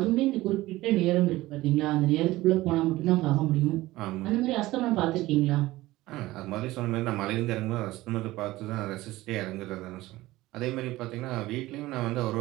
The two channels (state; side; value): quieter; left; 17.8 dB